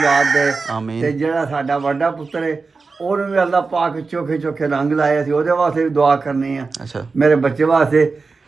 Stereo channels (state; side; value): quieter; left; 4.3 dB